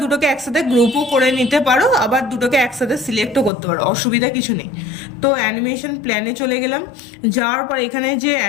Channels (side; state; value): right; drops out; at 3.5 s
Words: দুটোকে একসাথে গ্রুপও করে নিতে পারো, আবার দুটোকে একসাথে সিলেক্টও করতে পারো, অসুবিধা কিছু নেই। তো অ্যানিমেশন প্ল্যানে চলে গেলাম। যাওয়ার পর এখানে যে